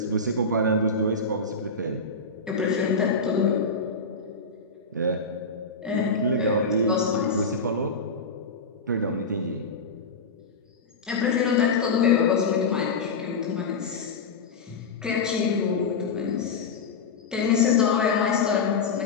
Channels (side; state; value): right; quieter; 4.0 dB